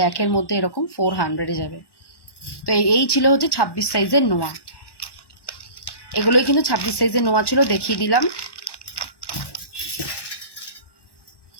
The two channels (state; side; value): late; right; 1.1 ms